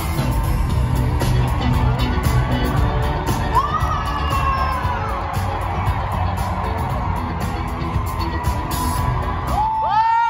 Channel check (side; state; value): both; identical; correlation 1.00